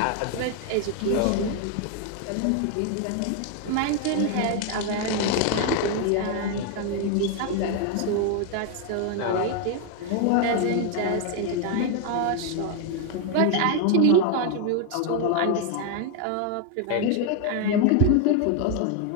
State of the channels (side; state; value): both; different; correlation 0.01